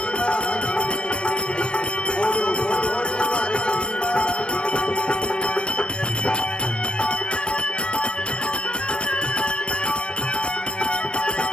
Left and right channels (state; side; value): late; right; 0.057 ms